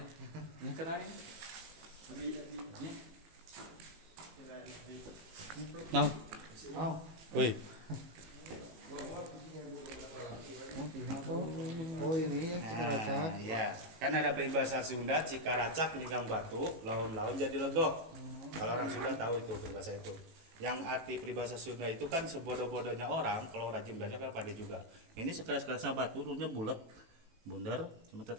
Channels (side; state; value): left; late; 18 ms